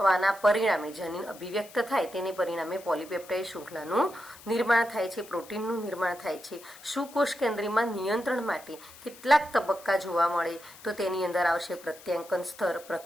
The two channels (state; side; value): noise; left; hiss, 20 dB below the sound